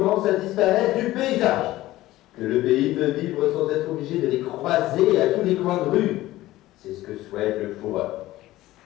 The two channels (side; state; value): right; quieter; 16.4 dB